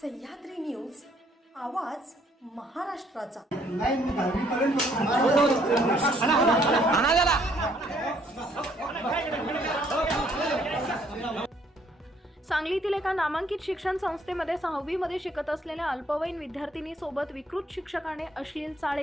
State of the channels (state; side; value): normal; both; correlation 0.65